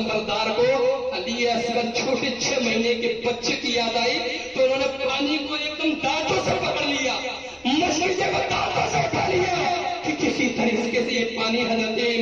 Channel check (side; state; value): both; identical; correlation 1.00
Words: کو علی اصغر چھوٹے 6 مہینے کے بچے کی یاد آئی تو انہوں نے پانی کو ایک دم دانتوں سے پکڑ لیا، مشکل کو دانتوں سے اٹھا لیا کہ کسی طریقے سے یہ پانی حضرت